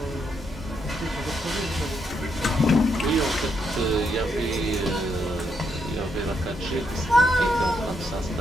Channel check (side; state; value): both; normal; correlation 0.78